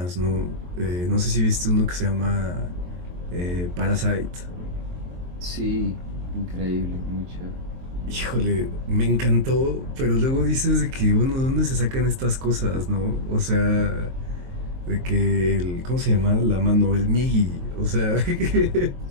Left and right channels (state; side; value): late; left; 23 ms